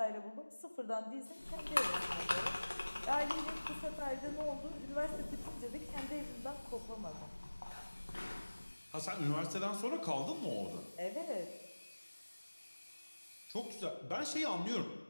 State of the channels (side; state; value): both; inverted; correlation -1.00